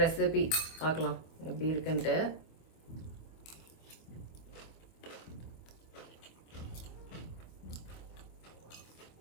ரெசிபி பார்க்கலாம் எப்படி இருக்குன்ட்டு.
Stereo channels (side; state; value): right; late; 25 ms